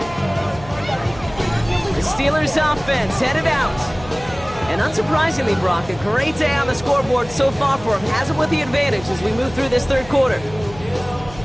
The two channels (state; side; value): noise; left; hum, 17 dB below the sound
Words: The Steelers offense headed out. And unsurprisingly, Brock, a great day on the scoreboard so far for him. Has it with the advantage as we move through this 3rd quarter.